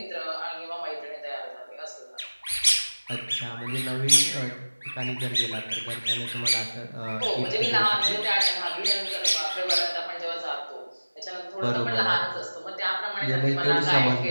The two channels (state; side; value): inverted; both; correlation -1.00